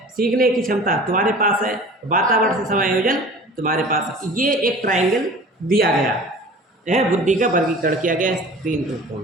सीखने की क्षमता तुम्हारे पास है, वातावरण से समायोजन तुम्हारे पास है। ये एक ट्रायंगल दिया गया है, बुद्धि का वर्गीकरण किया गया है 3 रूपों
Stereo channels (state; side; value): normal; both; correlation 0.42